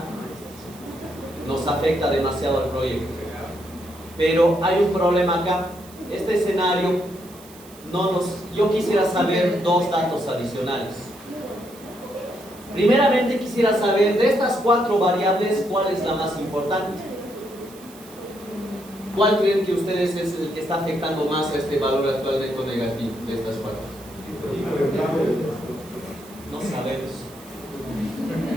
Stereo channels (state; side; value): noise; right; hiss, 22 dB below the sound